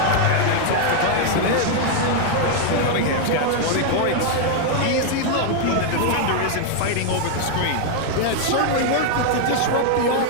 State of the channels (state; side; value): different; both; correlation 0.00